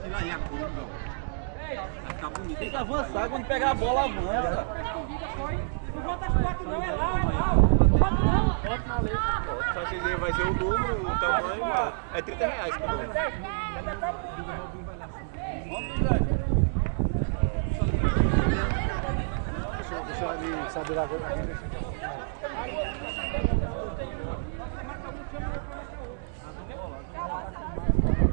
aí, a curva. Vai ficar bonito. Tem que avançar, quando pegar a bola, avança. Não volta as fotos não, é lá, Não volta não. Só vocês aí vai ser o número, o tamanho. É R$30 por número. Deixa eu ali saber agora.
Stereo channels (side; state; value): left; silent; digital silence